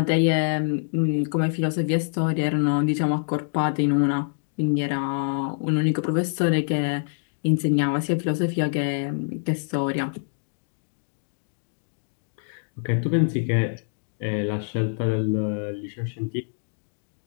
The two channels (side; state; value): right; silent; digital silence